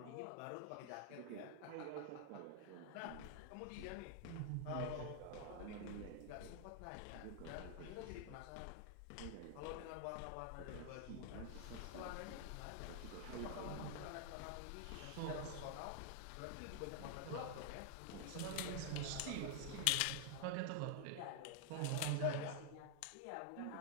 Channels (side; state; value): both; different; correlation 0.00